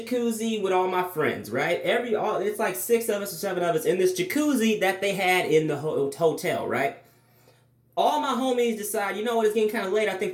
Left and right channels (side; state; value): both; identical; correlation 1.00